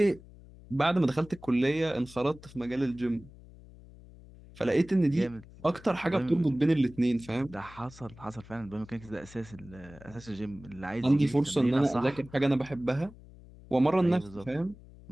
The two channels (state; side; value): noise; left; hum, 20 dB below the sound